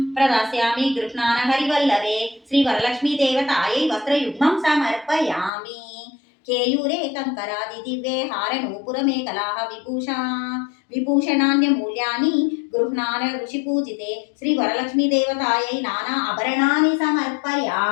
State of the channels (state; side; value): drops out; right; at 5.5 s